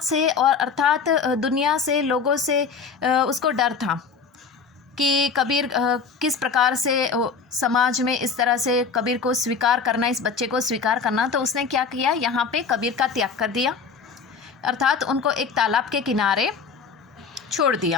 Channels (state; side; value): quieter; right; 5.4 dB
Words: से और अर्थात दुनिया से, लोगों से उसको डर था कि कबीर किस प्रकार से समाज में इस तरह से कबीर को स्वीकार करना, इस बच्चे को स्वीकार करना। तो उसने क्या किया, यहाँ पे कबीर का त्याग कर दिया, अर्थात उनको एक तालाब के किनारे छोड़